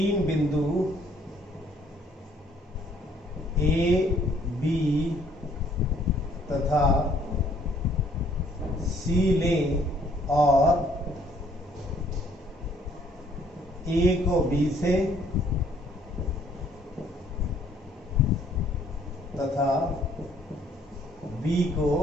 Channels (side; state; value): both; normal; correlation 0.63